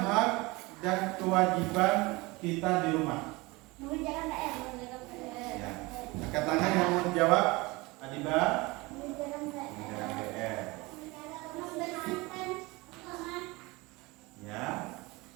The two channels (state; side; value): quieter; left; 23.4 dB